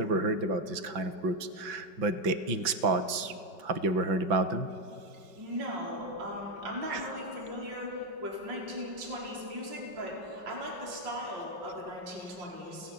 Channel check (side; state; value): left; late; 5.3 ms